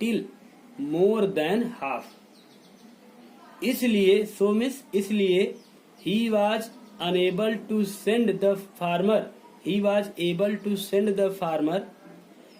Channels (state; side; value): identical; both; correlation 1.00